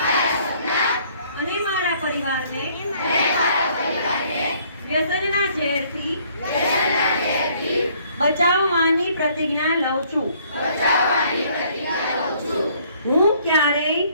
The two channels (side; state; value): both; inverted; correlation -0.62